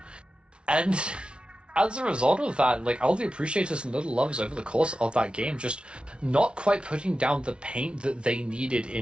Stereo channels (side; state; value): left; late; 0.057 ms